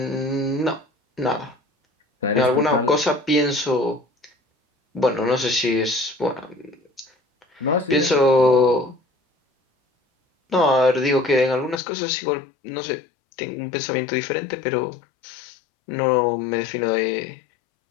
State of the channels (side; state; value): right; drops out; at 11.8 s